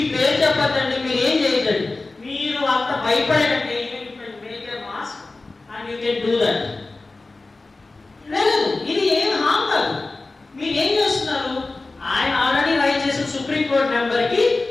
పేరు చెప్పద్దండి, మీరు ఏం చేయకండి, మీరు అంత భయపడకండి, make a mask and you can do that. లేదు, ఇది ఏం హామ్ కాదు. మీరు ఏం చేస్తున్నారు, ఆయన ఆల్రెడీ రైట్ చేసిన సుప్రీం కోర్ట్ నెంబర్ కి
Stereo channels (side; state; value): right; quieter; 3.4 dB